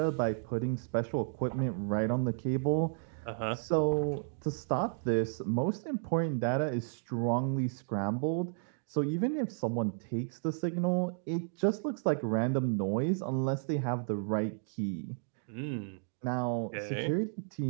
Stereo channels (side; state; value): left; silent; digital silence